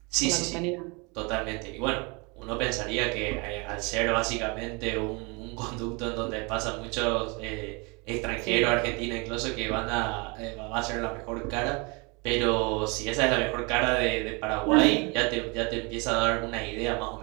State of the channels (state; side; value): quieter; left; 29.5 dB